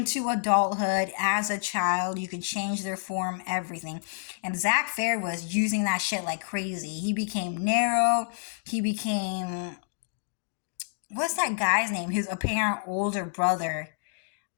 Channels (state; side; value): silent; right; digital silence